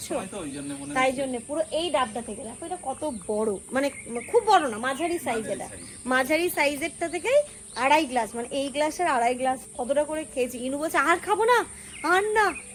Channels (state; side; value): identical; both; correlation 1.00